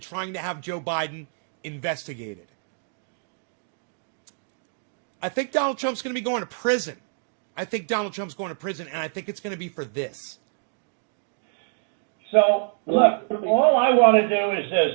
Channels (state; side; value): silent; left; 61 dB below the other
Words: to have Joe Biden investigated. I think Donald Trump's going to be going to prison. I think Donald Trump's going to prison, and I think it's going to be for this. So, look, all I want to do is this.